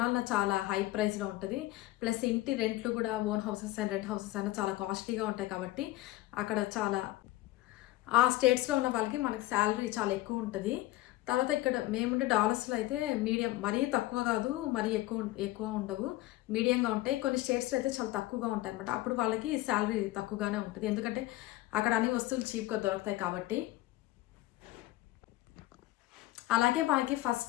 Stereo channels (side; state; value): right; quieter; 17.3 dB